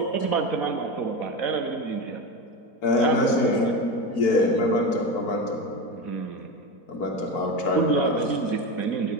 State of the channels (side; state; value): right; late; 4.6 ms